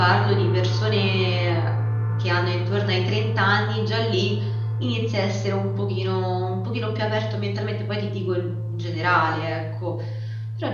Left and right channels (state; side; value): identical; both; correlation 1.00